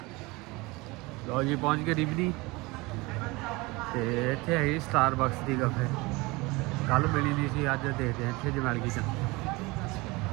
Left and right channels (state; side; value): quieter; left; 23.6 dB